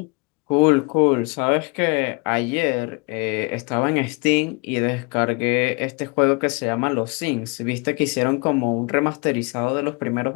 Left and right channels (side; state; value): right; quieter; 29.8 dB